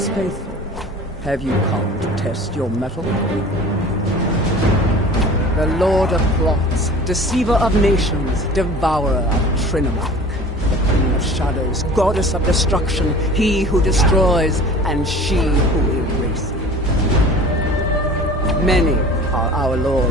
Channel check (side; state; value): both; normal; correlation 0.42